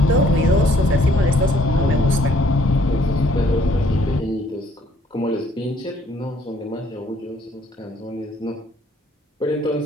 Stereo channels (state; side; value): normal; both; correlation 0.63